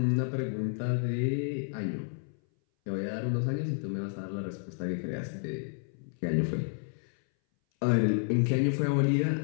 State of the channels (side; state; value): right; silent; 57 dB below the other